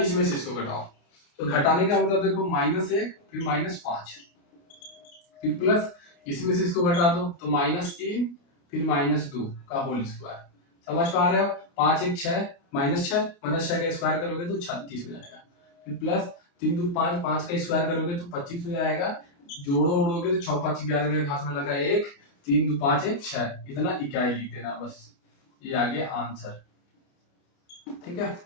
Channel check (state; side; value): late; right; 29 ms